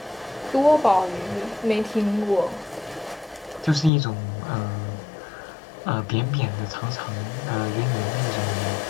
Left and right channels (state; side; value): drops out; right; at 3.9 s